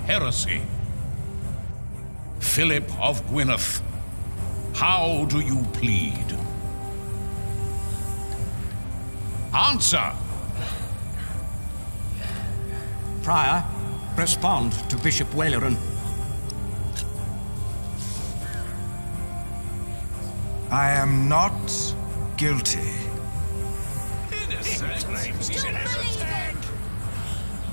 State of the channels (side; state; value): both; inverted; correlation -1.00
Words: Philip of Gwynedd, how do you plead? Answer! Prior, respond to Bishop Waileron. I am not guilty.